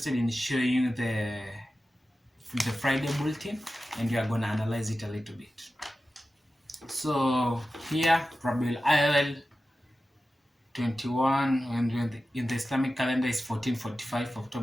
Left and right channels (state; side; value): normal; both; correlation 0.94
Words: in showing you the Friday bulletin, and we are going to analyze it a little bit. So here, Rabiul Awal 21, and in the Islamic calendar is 1445,